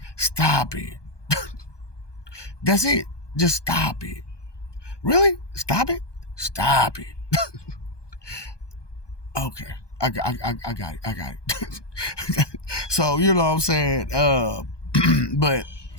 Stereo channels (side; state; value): right; late; 1.2 ms